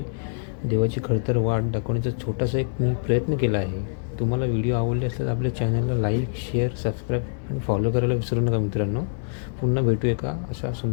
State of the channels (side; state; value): right; silent; 62 dB below the other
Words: देवाची खडतर वाट दाखवण्याचा छोटासा एक मी प्रयत्न केला आहे. तुम्हाला व्हिडिओ आवडले असल्यास आपल्या चॅनलला लाईक, शेअर, सबस्क्राईब आणि फॉलो करायला विसरू नका मित्रांनो. पुन्हा भेटू एका अशा